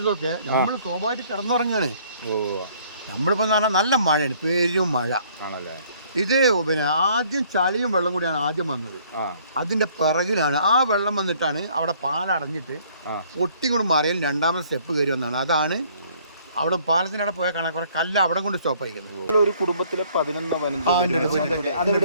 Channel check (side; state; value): both; inverted; correlation -0.60